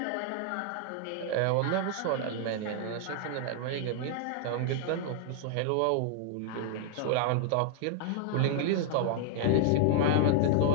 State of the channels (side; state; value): both; different; correlation -0.01